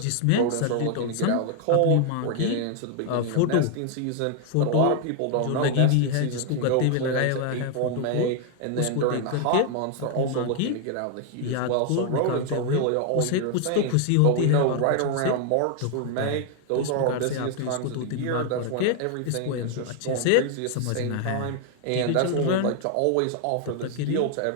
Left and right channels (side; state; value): both; different; correlation 0.00